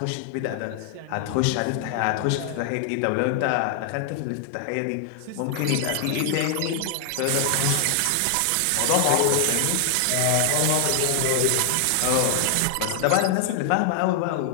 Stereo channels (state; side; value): different; both; correlation 0.00